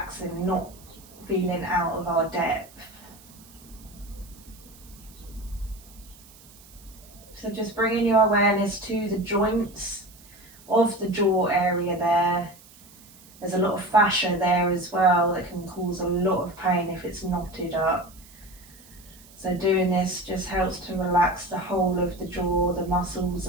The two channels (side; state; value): right; noise; hiss, 23 dB below the sound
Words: not feeling out of our depth. So just bringing your awareness to the joints of the jaw area there. There's a lot of fascia there as well that can cause a lot of pain if it's knotted up. So doing this just helps to relax the whole of the jaw, the muscles,